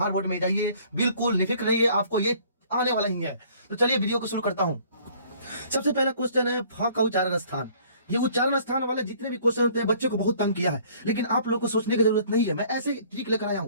बोर्ड में जाइए, बिल्कुल निफिक्र रहिए, आपको ये आने वाला ही है। तो चलिए वीडियो को शुरू करता हूं। सबसे पहला क्वेश्चन है फ का उच्चारण स्थान। ये उच्चारण स्थान वाले जितने भी क्वेश्चन होते हैं बच्चे को बहुत तंग किया है, लेकिन आप लोग को सोचने की जरूरत नहीं है। मैं ऐसे ट्रिक लेकर आया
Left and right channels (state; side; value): inverted; both; correlation -0.56